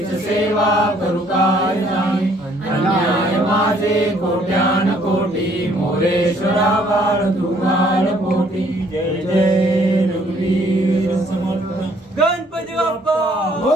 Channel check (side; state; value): both; normal; correlation 0.63